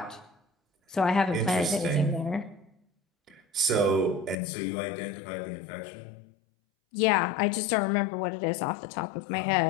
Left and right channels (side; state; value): right; drops out; at 4.4 s